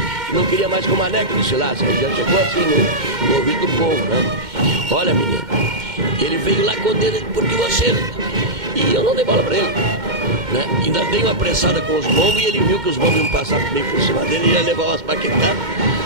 que não queria mais que o Maneco desfilasse. Aí já chegou assim no ouvido do povo, né? Olha, menino, ele veio lá com o dedo porque você... E eu não dei bola pra ele. né? Ainda dei uma pressada com os bombos e ele viu que os bombos iam passar meio por cima dele e ia levar umas paquetadas.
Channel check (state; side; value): late; left; 2.1 ms